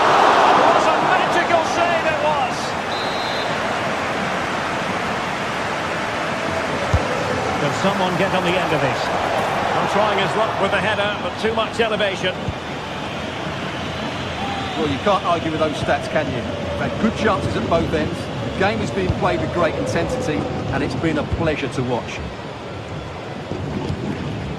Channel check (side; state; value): both; identical; correlation 1.00